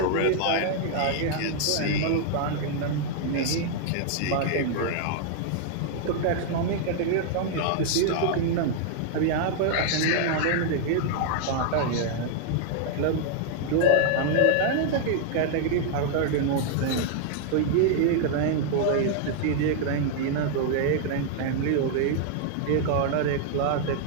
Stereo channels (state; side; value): different; both; correlation -0.01